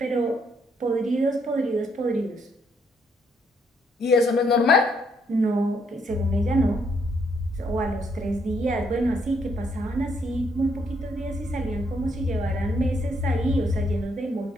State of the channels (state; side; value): normal; both; correlation 0.72